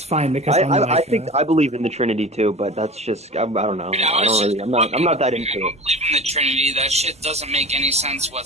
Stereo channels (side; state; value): both; normal; correlation 0.36